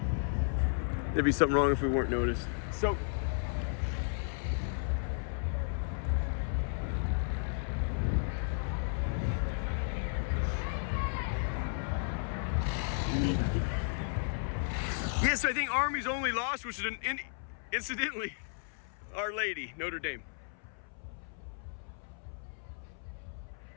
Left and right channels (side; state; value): right; silent; 55 dB below the other